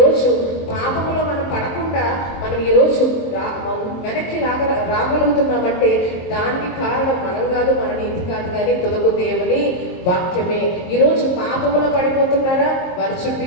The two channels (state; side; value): late; right; 23 ms